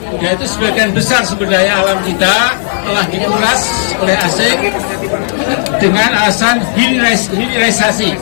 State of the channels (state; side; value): silent; right; 73 dB below the other